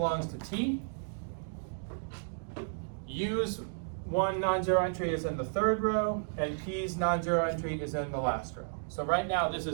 to T. U's 1 non-zero entry is in the third row, and P's non-zero entry is in the last row. So right now, this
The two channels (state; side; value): silent; left; digital silence